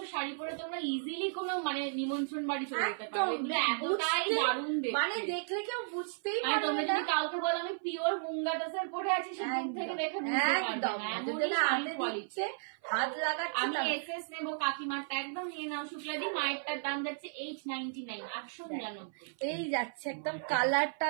শাড়ি পরে তোমরা ইজিলি কোনো মানে নিমন্ত্রণ বাড়ি চলে যেতে পারো। এগুলো এতটাই দারুণ দেখতে, মানে দেখলে কেউ বুঝতেই মানে পারবে তোমরা না। যদি কাউকে বলো আমি পিওর মুঙ্গা তাসার পরে আছি, সে দূর থেকে দেখে বুঝতে পারবে একদম না। যদি না হাতে দিচ্ছে, হাত লাগাচ্ছে। আমি এসএস নেব, কাকিমারটা একদম নিয়ে নাও শুক্লাদি। মায়েরটার দাম যাচ্ছে 899, 899। এই যাচ্ছে একদম কালারটা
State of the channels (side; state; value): left; silent; 55 dB below the other